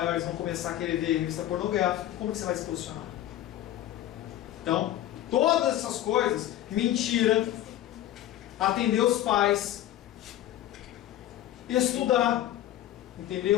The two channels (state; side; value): quieter; right; 13.0 dB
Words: vão começar a querer ver revista pornográfica. Como que você vai se posicionar? Então, todas essas coisas, mentira, atender os pais, estudar,